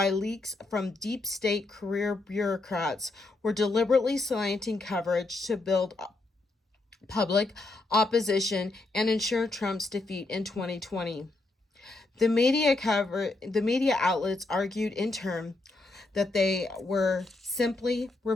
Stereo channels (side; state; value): right; quieter; 3.1 dB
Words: leaks from deep state career bureaucrats, were deliberately slanting coverage to build public opposition and ensure Trump's defeat in 2020. The media outlets argued in turn that they were simply